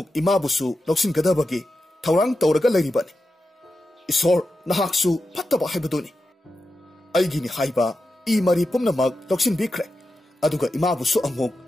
imabusu loksingadabagi thawrang tawraga lairibani. Isor nahaksu phattaba haibaduni. Aigini haiba I mari pumnamak loksinbikre. Aduga imabusu amuk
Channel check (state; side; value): normal; both; correlation 0.90